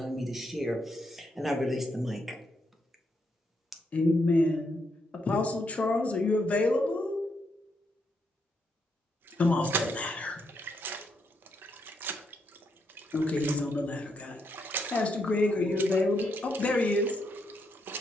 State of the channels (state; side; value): normal; both; correlation 0.78